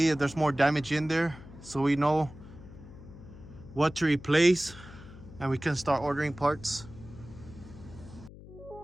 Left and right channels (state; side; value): noise; left; hum, 17 dB below the sound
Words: if there's more damage in there, so we know what to replace and we can start ordering parts.